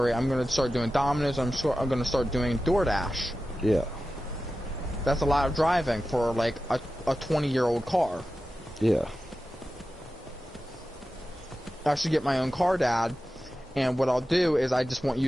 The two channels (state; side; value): normal; both; correlation 0.93